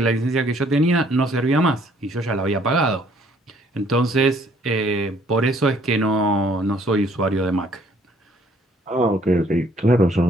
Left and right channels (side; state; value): both; normal; correlation 0.62